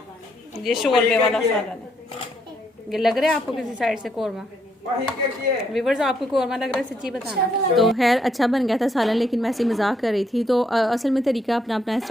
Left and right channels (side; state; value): both; normal; correlation 0.73